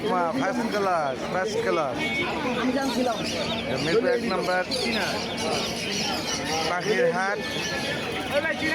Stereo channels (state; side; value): identical; both; correlation 1.00